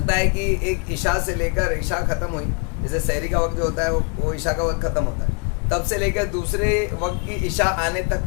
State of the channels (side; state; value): right; quieter; 34.9 dB